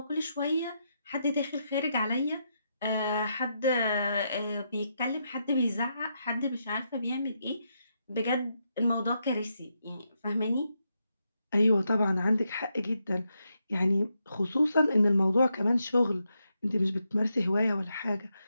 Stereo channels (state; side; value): inverted; both; correlation -0.82